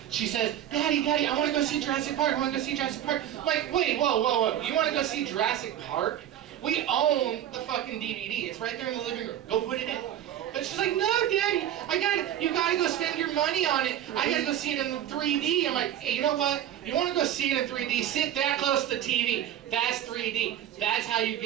She says, Daddy, I want to go see Jurassic Park. I want to go see Jurassic Park. I'm like, wait, whoa. You want to go see Jurassic Park? We own the fucking DVD. It's right there in the living room. Go put it in. But she's like, no, Daddy, you gotta go spend your money on it. I gotta go see it in 3D. I'm like, hey, you know what? You wanna go see it in 3D? Sit that close to the TV. That's 3D. That's how you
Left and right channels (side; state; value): left; quieter; 11.2 dB